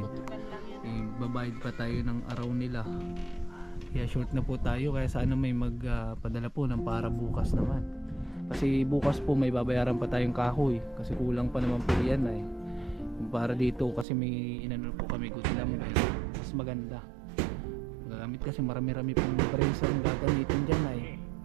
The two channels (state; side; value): drops out; left; at 14.1 s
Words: Babayad pa tayo ng araw nila. Kaya short na po tayo, kaya sana may magpadala po ng para bukas naman. Kasi bukas po may babayaran pa tayong kahoy kasi kulang pa naman po yan para dito kasi may inano po kami gudlam mas maganda gagamit kasi marami-rami pong brace ang gagamitin dyan